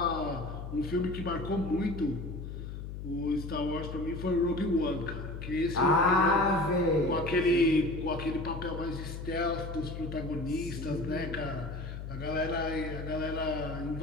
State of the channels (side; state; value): left; noise; hum, 8 dB below the sound